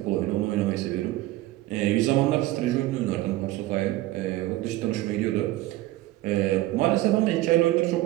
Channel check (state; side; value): quieter; left; 16.6 dB